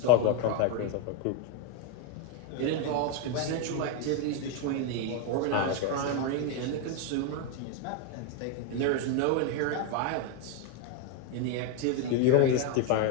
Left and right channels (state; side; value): different; both; correlation 0.01